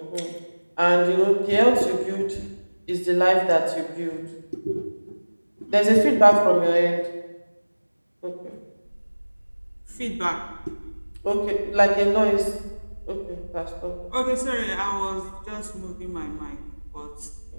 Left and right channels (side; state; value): both; inverted; correlation -1.00